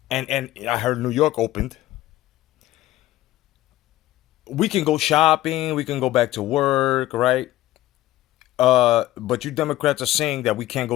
and I heard New York opened. We can go shopping, we can go back to work, right? But you Democrats are saying that we can't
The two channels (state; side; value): quieter; right; 15.3 dB